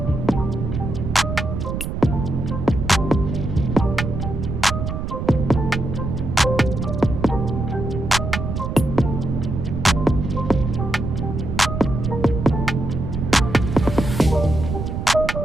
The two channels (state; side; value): noise; right; rumble, 3 dB below the sound